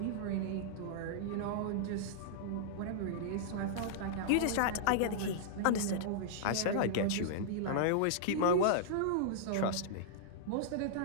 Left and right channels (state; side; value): different; both; correlation -0.02